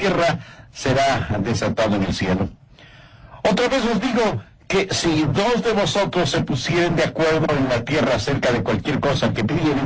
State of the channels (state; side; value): identical; both; correlation 1.00